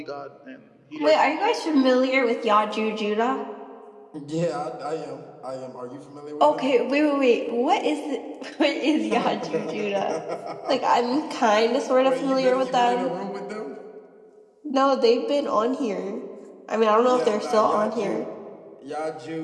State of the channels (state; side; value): identical; both; correlation 1.00